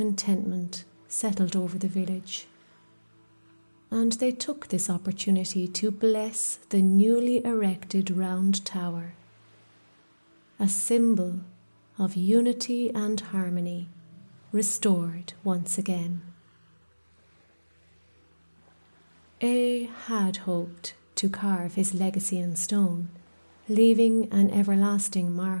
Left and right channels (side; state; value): both; inverted; correlation -1.00